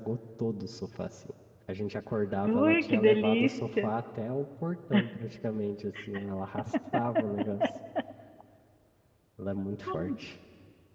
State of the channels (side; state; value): both; identical; correlation 1.00